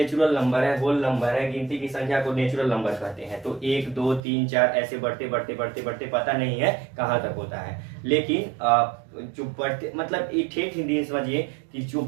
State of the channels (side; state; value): left; drops out; at 4.2 s